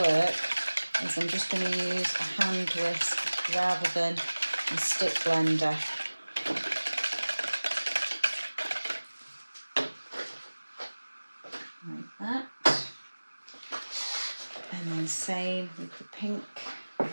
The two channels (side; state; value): both; inverted; correlation -1.00